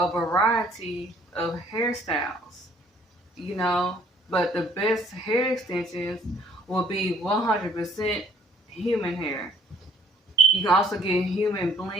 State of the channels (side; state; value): both; normal; correlation 0.60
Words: variety of hairstyles, you know, but the best hair extensions will be 100% human hair. You can also get human